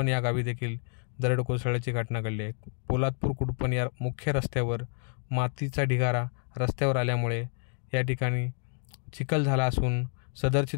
या गावी देखील दरड कोसळल्याची घटना घडली आहे. पोलादपूर कुडपण या मुख्य रस्त्यावर मातीचा ढिगारा रस्त्यावर आल्यामुळे या ठिकाणी चिखल झाला असून सदरची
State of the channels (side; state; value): right; silent; 58 dB below the other